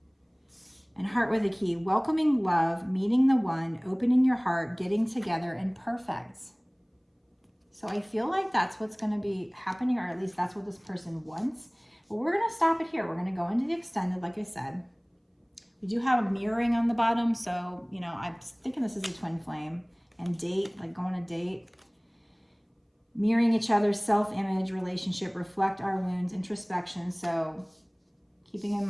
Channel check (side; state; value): both; identical; correlation 1.00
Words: And heart with a key, welcoming love, meeting the one, opening your heart, getting together, and perfect. So I feel like that's what's going to be happening, or at least that's what this person wants. But we're going to stop it here. We're going to go into the extended, like I said. We do have a mirroring on the bottom, so, you know, I'm thinking this is a twin flame. And date, like go on a date. Mirroring each other's self-image, relationship, reflect our wounds, introspection. So keeping in